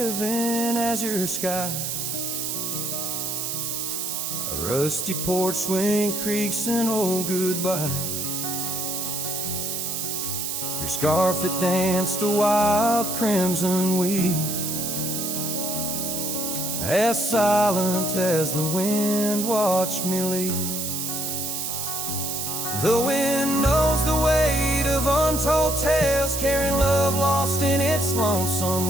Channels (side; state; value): right; noise; hiss, 3 dB below the sound